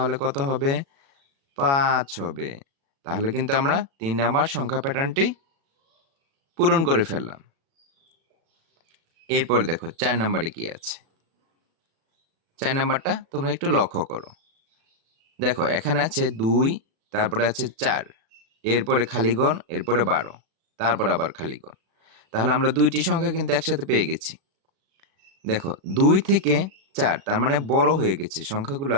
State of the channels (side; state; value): left; late; 36 ms